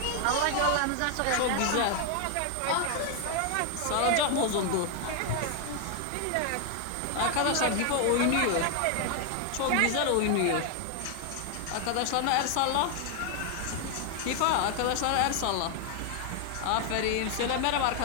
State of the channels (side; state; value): both; different; correlation 0.00